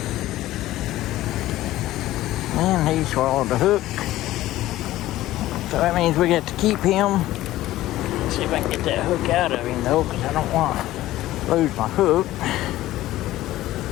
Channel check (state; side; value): quieter; right; 15.5 dB